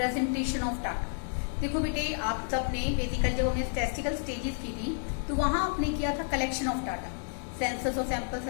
of data. देखो बेटे आप सबने बेसिकली जब हमने स्टैटिस्टिकल स्टेजेस की थी तो वहां आपने किया था कलेक्शन ऑफ डाटा, सेंसस और सैंपल्स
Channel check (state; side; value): silent; right; 57 dB below the other